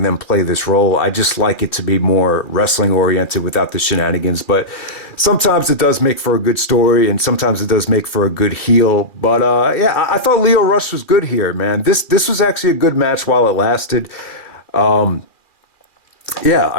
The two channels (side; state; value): right; late; 2.4 ms